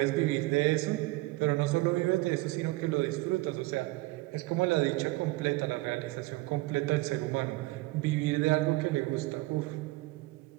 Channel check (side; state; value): left; quieter; 20.4 dB